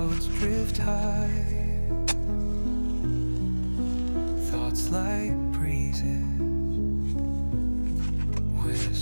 drift high. Thoughts like breezes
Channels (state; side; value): inverted; both; correlation -1.00